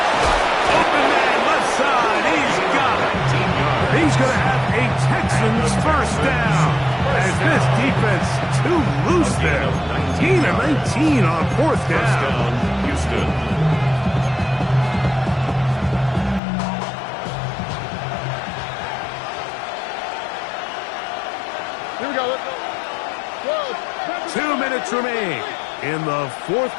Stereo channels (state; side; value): drops out; right; at 16.4 s